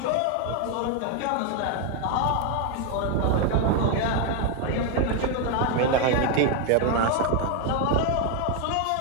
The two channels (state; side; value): different; both; correlation 0.01